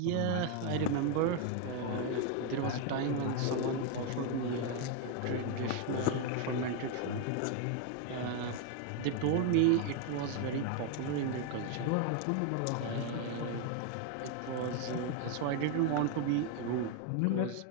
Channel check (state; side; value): different; both; correlation 0.01